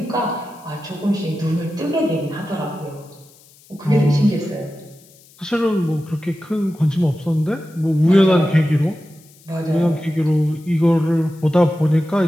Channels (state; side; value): noise; left; hiss, 27 dB below the sound